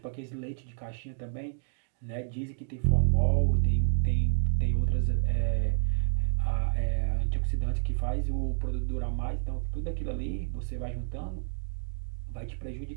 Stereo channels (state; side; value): silent; left; digital silence